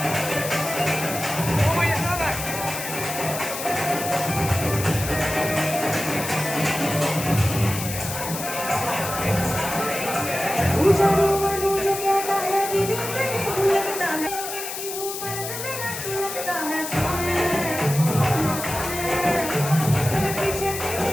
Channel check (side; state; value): left; noise; hiss, 7 dB below the sound